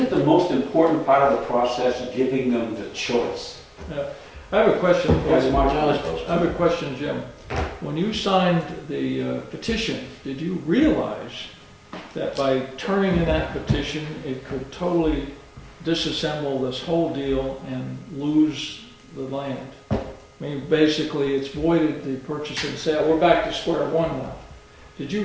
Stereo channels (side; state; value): both; identical; correlation 1.00